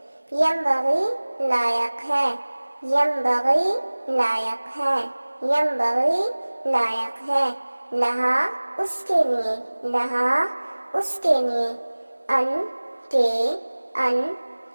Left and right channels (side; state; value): both; inverted; correlation -1.00